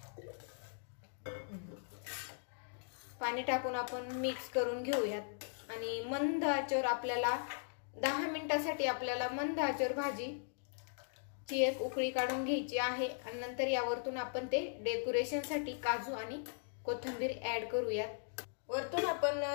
पाणी टाकून आपण मिक्स करून घेऊयात आणि मंद आचेवर आपल्याला 10 मिनिटासाठी आपल्याला मंद आचेवर भाजीची एक उकळी काढून घ्यायची आहे. आणि नंतर यावरतून आपण ते डेकोरेशन साठी काजू आणि कोथिंबीर ऍड करूयात. वरतून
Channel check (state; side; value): silent; right; digital silence